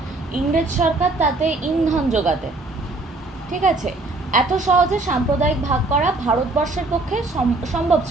ইংরেজ সরকার তাতে ইন্ধন যোগাতে। ঠিক আছে, এত সহজে সাম্প্রদায়িক ভাগ করা ভারতবর্ষের পক্ষে সম্ভব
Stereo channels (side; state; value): left; quieter; 3.1 dB